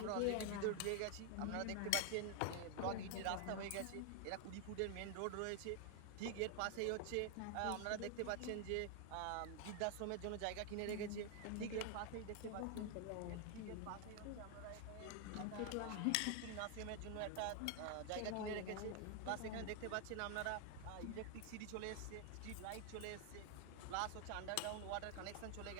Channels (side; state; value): both; different; correlation 0.00